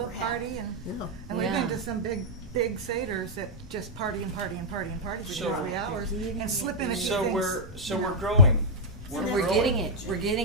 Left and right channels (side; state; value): both; normal; correlation -0.04